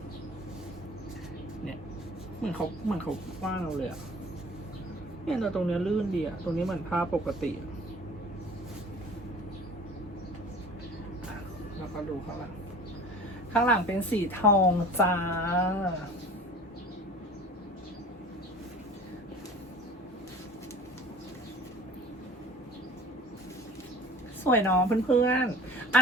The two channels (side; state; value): both; normal; correlation 0.44